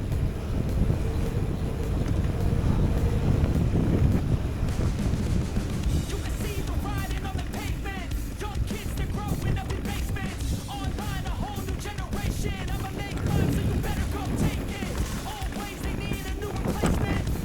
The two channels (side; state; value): both; identical; correlation 1.00